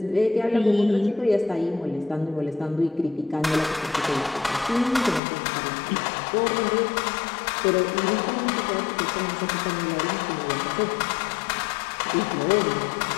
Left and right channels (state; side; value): drops out; right; at 5.2 s